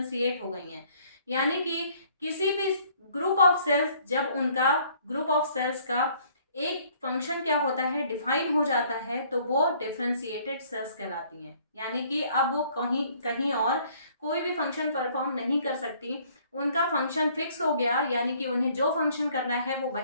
हो गई हैं। यानी कि किसी भी ग्रुप ऑफ सेल्स, जब उनका ग्रुप ऑफ सेल्स का एक फंक्शन क्या होता है, डिफाइन हो जाता है, तो वो डिफ्रेंशिएटेड सेल्स कहलाती हैं। यानी कि अब वो कहीं कहीं और कोई भी फंक्शन परफॉर्म नहीं कर सकती, उनका फंक्शन फिक्स हो गया, यानी कि उन्हें जो फंक्शन करना है वो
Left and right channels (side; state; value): both; inverted; correlation -0.60